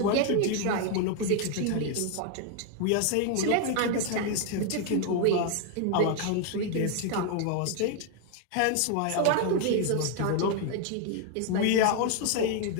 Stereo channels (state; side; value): different; both; correlation 0.01